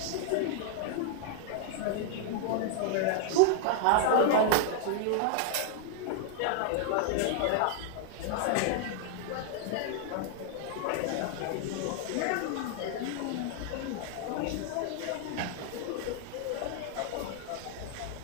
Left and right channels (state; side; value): different; both; correlation 0.00